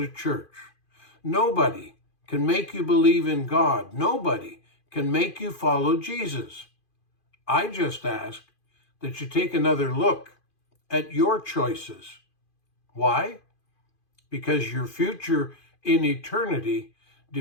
church. Nobody can make you believe in God. Nobody can make you follow Jesus. I just ask that you take another look at your choices. Why? Because your future in eternity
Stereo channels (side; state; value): right; late; 2.5 ms